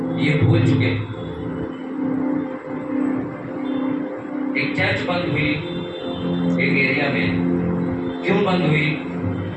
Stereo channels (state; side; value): identical; both; correlation 1.00